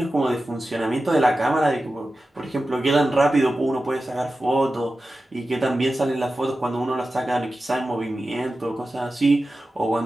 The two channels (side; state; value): both; normal; correlation 0.93